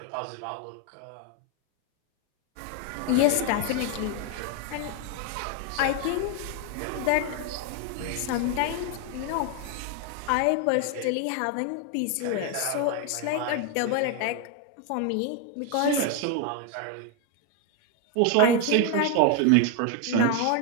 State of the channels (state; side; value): different; both; correlation 0.01